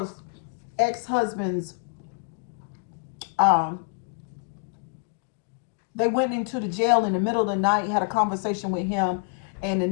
ex-husband's, they went into the jail in the middle of the night, had a conversation with him, and the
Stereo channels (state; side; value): quieter; right; 37.9 dB